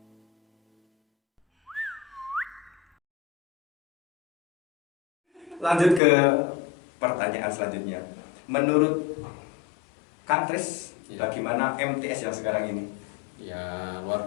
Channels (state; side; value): drops out; right; at 6.0 s